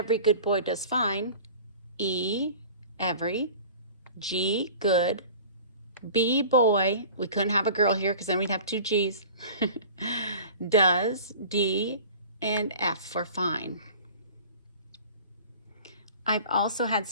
good boy does fine, E, every, G, good, B, boy, we couldn't have a girl here because then we'd have 2 G's, does, D, and F for fine. I've also had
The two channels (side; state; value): both; inverted; correlation -0.42